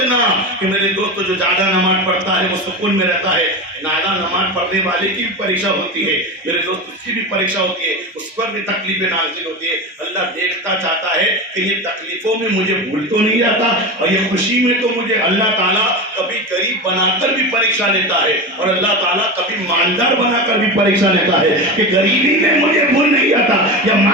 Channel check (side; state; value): both; normal; correlation 0.23